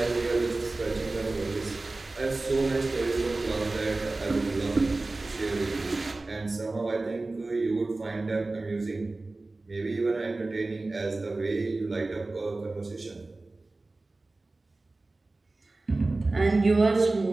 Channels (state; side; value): quieter; left; 3.2 dB